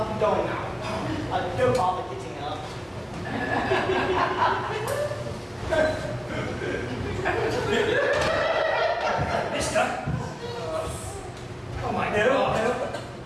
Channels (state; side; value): identical; both; correlation 1.00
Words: going now. Don't bother getting up. Mister? Oh my God. No.